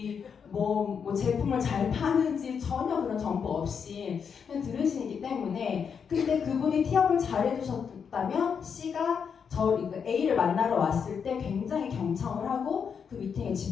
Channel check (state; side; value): quieter; right; 6.7 dB